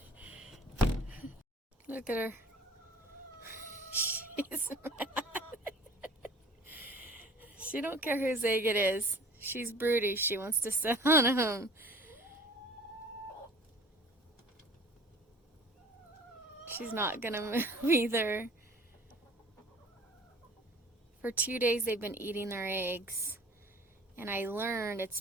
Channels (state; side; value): normal; both; correlation 0.46